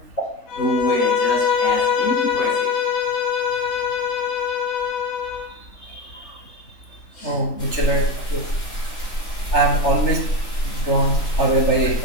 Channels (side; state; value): right; late; 3.3 ms